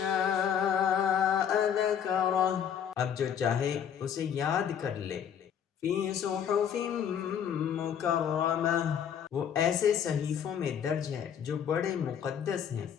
ذَكَرَهُ، اب جو چاہے اسے یاد کر لے۔ فِي صُحُفٍ مُكَرَّمَةٍ، وہ ایسے صحیفوں میں درج ہے جو بڑے مقدس ہیں۔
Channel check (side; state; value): right; quieter; 8.4 dB